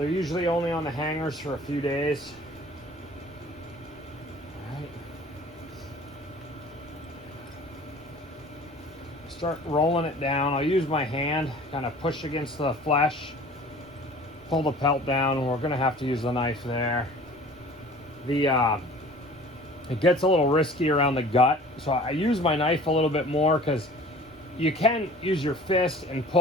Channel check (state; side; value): noise; right; rumble, 28 dB below the sound